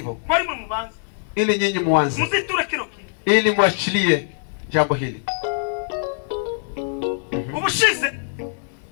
ili nyinyi muanze, ili muachilie jambo hili.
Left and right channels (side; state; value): right; silent; 64 dB below the other